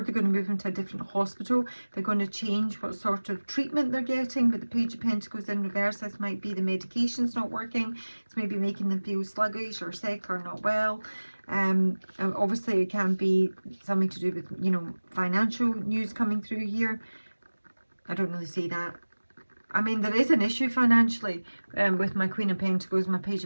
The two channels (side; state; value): both; inverted; correlation -1.00